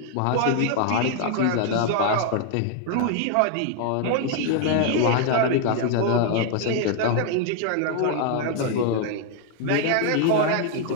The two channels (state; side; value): different; both; correlation 0.00